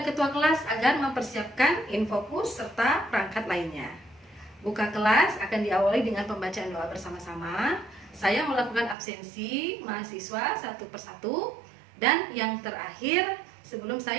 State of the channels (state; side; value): drops out; left; at 9.0 s